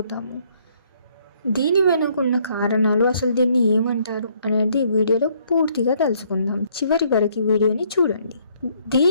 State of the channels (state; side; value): inverted; both; correlation -0.66